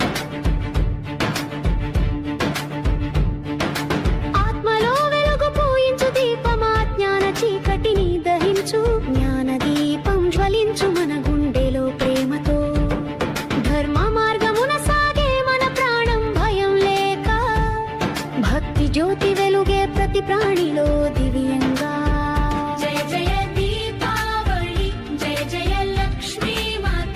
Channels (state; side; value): identical; both; correlation 1.00